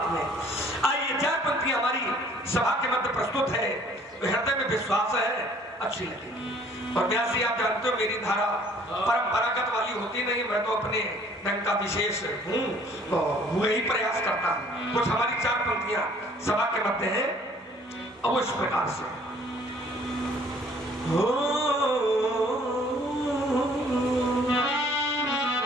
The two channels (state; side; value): normal; both; correlation 0.57